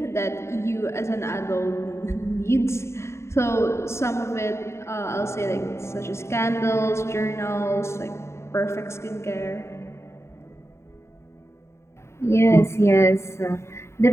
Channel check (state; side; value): late; right; 0.13 ms